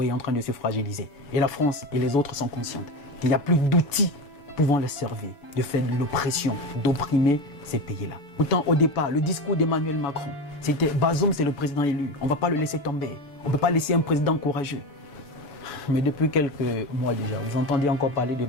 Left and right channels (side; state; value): right; late; 7.0 ms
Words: est en train de se fragiliser. Et la France et les autres sont conscientes qu'il n'y a plus d'outils pouvant les servir de faire de l'oppression, d'opprimer ces pays-là. Pourtant, au départ, le discours d'Emmanuel Macron, c'était Bazoum, c'est le président élu. On ne va pas le laisser tomber. On ne peut pas laisser un président courageux. Mais depuis quelques mois déjà, vous entendez encore parler de